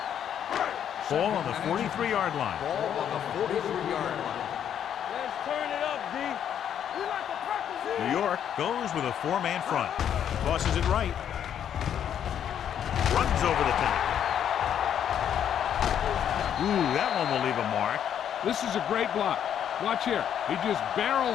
Ball on the 43-yard line. Ball on the 43-yard line. Let's turn it up, D. We like to practice here. New York goes with a 4-man front. Tosses it right. Runs over the tackle. Ooh, that one will leave a mark. This is a great block. Watch here. He just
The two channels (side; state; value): right; quieter; 9.3 dB